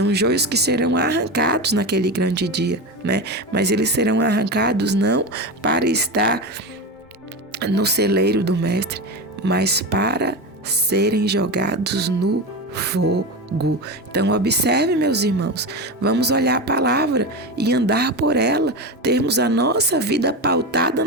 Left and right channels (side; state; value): both; normal; correlation 0.21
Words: joios que serão arrancados naquele grande dia, né? Mas eles serão arrancados não para estar no celeiro do mestre, mas para serem jogados no fogo. Então observe, meus irmãos, vamos olhar a palavra e andar por ela, termos a nossa vida pautada